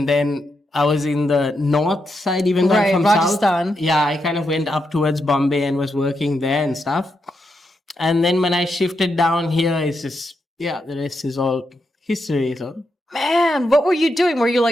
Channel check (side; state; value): both; normal; correlation 0.83